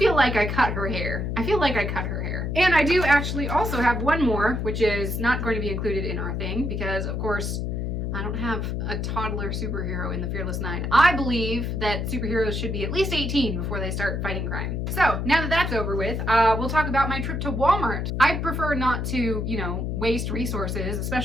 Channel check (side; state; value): left; noise; hum, 2 dB below the sound